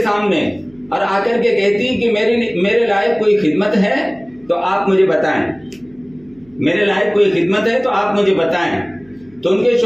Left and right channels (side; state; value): right; noise; hum, 30 dB below the sound